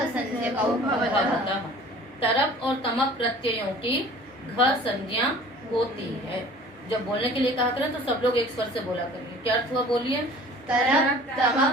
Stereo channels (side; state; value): both; normal; correlation 0.47